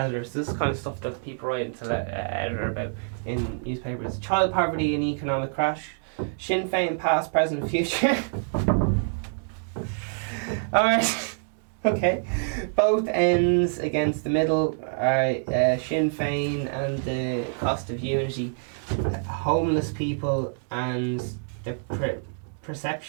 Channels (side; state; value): left; silent; digital silence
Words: This is kind of stuff that people write to the editor about in newspapers. Child poverty and economic crash. Sinn Féin past, present, future. Alright. Okay. Both ends against the middle. Alright, Sinn Féin and the cost of unity. Homeless people and the